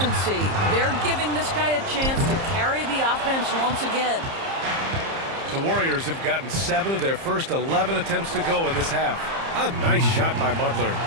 They're giving this guy a chance to carry the offense once again. The Warriors have gotten 7 of their first 11 attempts to go in this half. A nice shot by Butler.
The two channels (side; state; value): left; late; 30 ms